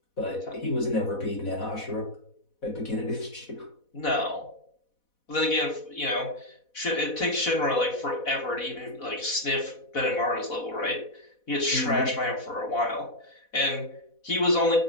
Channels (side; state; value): right; late; 4.1 ms